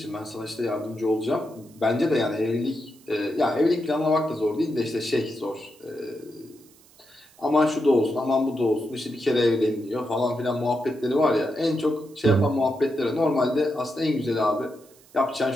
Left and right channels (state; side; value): noise; right; hiss, 27 dB below the sound